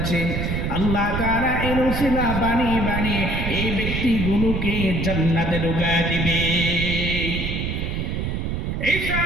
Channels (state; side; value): noise; right; rumble, 2 dB below the sound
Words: আল্লাহ তাআলা এর উসিলা বানিয়ে বানিয়ে এই ব্যক্তিগুলোকে জান্নাতে ঢুকায় দিবে। ঈসা